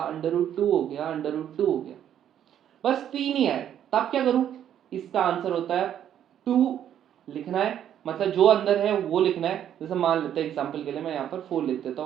√2 हो गया, √2 हो गया, बस 3 ही आए, तब क्या करूं? इसका आंसर होता है 2 लिखना है, मतलब जो अंदर है वो लिखना है। जैसे मान लेते हैं एग्जांपल के लिए मैं यहाँ पर 4 लिख देता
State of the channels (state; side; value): quieter; left; 10.2 dB